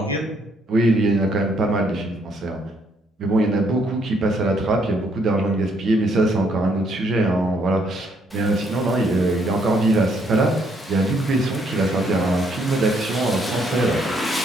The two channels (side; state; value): both; normal; correlation 0.70